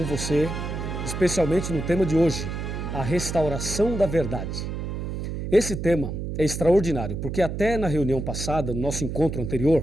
você, especialmente no tema de hoje, a restauração da verdade. Esse tema é extraordinário, porque até na reunião passada, no nosso encontro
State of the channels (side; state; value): right; noise; hum, 5 dB below the sound